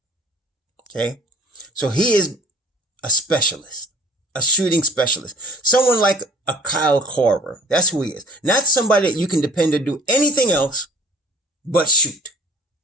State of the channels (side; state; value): both; normal; correlation 0.50